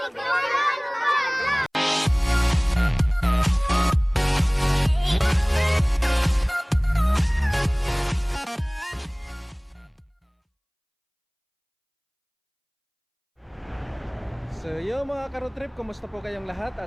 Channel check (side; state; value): both; identical; correlation 1.00